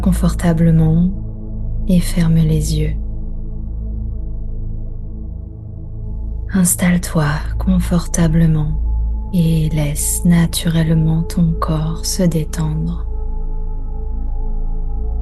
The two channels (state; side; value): identical; both; correlation 1.00